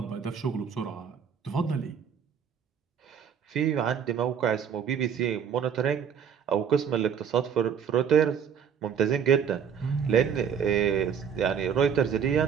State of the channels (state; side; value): quieter; left; 7.7 dB